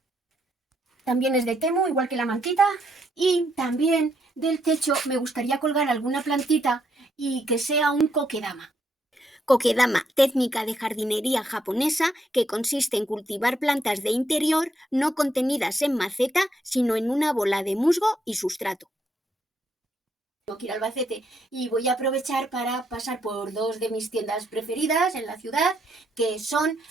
También es de Temu, igual que la mantita. Y también del techo me gustaría colgar alguna plantita y que sea un kokedama. Kokedama, técnica de jardinería japonesa que consiste en cultivar plantas de interior no contenidas en maceta, sino en una bola de musgo y sustrato. Tengo que ir a Albacete y voy a aprovechar para pasar por dos de mis tiendas preferidas en la ciudad, que son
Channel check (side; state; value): both; normal; correlation 0.75